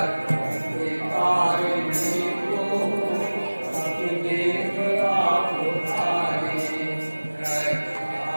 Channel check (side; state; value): both; inverted; correlation -1.00